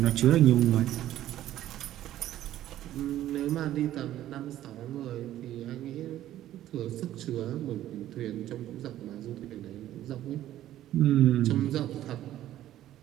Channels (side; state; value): left; quieter; 13.0 dB